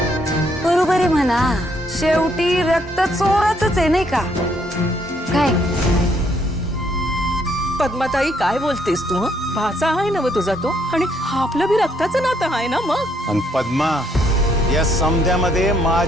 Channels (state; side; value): normal; both; correlation 0.70